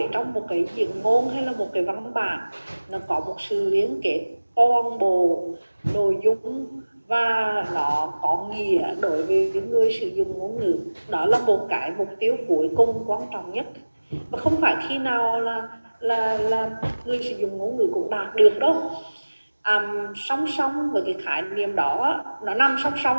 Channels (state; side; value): inverted; both; correlation -1.00